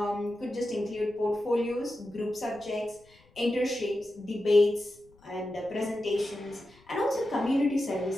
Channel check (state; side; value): noise; left; rumble, 29 dB below the sound